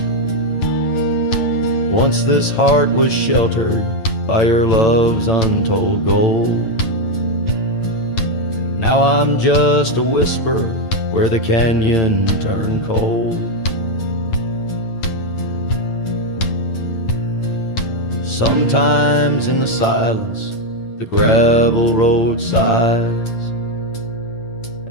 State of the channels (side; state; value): right; late; 8.9 ms